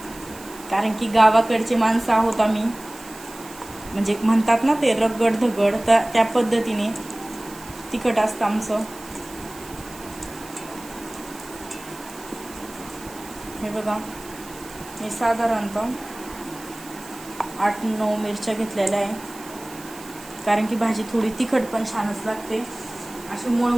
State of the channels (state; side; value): noise; right; hiss, 18 dB below the sound